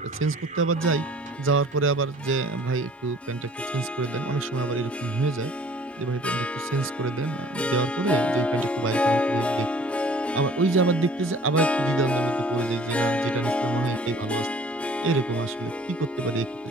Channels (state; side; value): normal; both; correlation 0.51